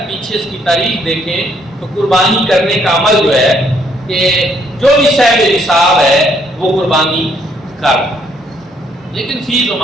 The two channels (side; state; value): both; normal; correlation 0.69